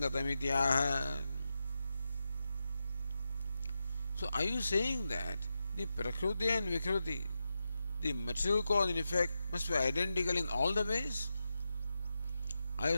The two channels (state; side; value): inverted; both; correlation -0.89